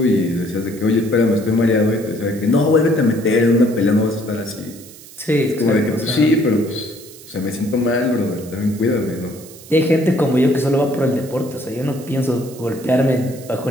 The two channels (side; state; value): right; noise; hiss, 19 dB below the sound